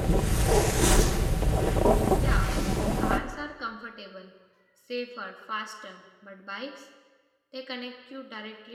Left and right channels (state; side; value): identical; both; correlation 1.00